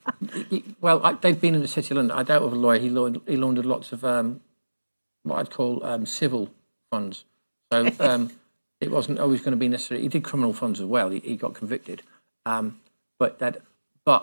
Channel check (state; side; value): inverted; both; correlation -1.00